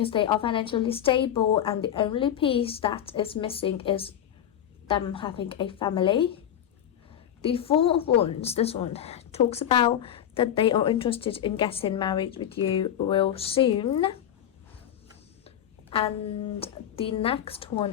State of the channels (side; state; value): right; quieter; 10.2 dB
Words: they are financially stable, and the only piece that is missing is them having a family. The Four of Wands, this one, talks about that they are interested in getting married with you real soon. And the next